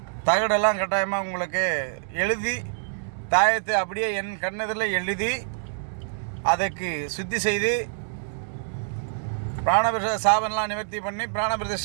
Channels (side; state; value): left; silent; digital silence